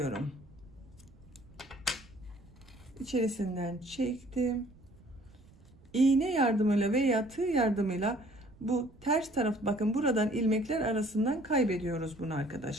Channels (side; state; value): right; noise; rumble, 25 dB below the sound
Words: İçerisinden çektim. İğne yardımıyla veya tığ yardımıyla bu ters taraf bakın buradan ilmekler arasından kaybediyoruz bunu